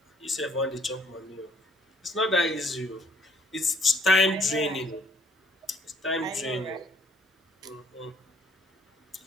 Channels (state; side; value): normal; both; correlation 0.62